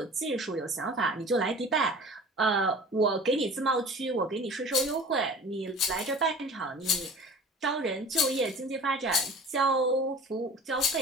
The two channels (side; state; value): both; normal; correlation 0.42